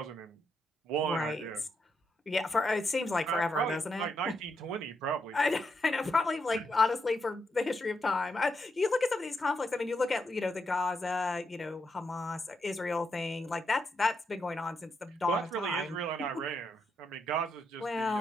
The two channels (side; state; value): both; normal; correlation 0.81